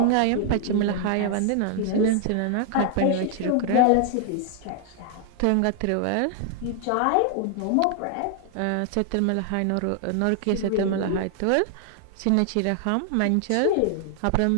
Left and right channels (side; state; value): both; different; correlation 0.00